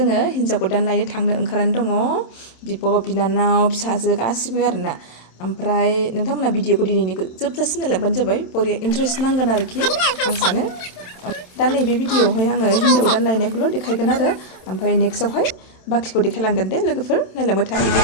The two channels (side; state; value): right; late; 27 ms